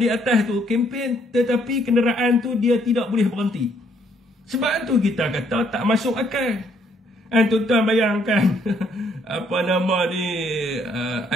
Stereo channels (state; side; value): normal; both; correlation 0.68